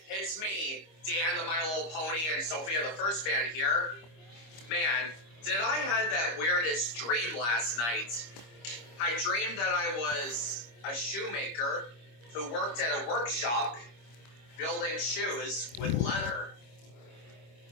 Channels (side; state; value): right; late; 25 ms